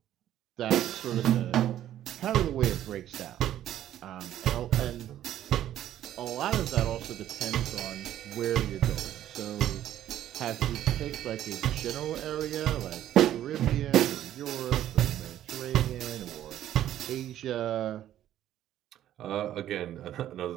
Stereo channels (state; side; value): quieter; left; 12.0 dB